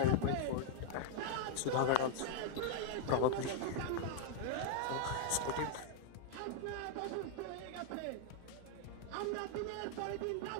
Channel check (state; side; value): different; both; correlation 0.00